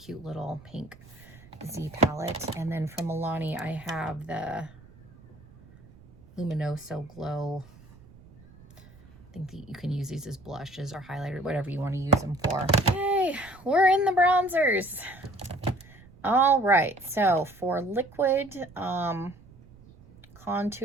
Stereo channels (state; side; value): noise; right; rumble, 23 dB below the sound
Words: little pink Z palette. And then from Milani, I have the Luminoso Glow. I think that you can use these as blushes or highlighter, whatever you want to use them for. Yay, we're in the bronzers. All right, so for liquid